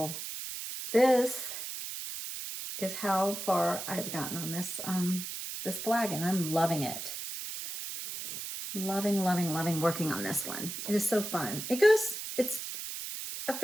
this is how far I've gotten on this this flag, and I'm loving it. Loving, loving, loving working on this one. It is so fun. It's a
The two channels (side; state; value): right; noise; hiss, 7 dB below the sound